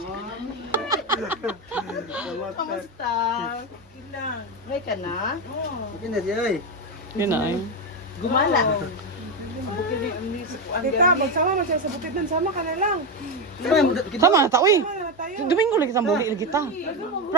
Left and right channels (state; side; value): normal; both; correlation 0.12